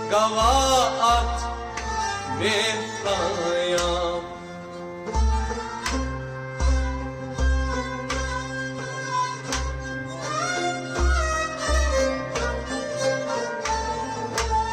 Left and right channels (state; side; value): identical; both; correlation 1.00